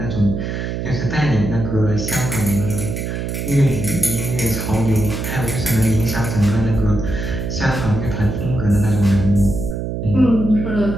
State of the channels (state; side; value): noise; right; hum, 4 dB below the sound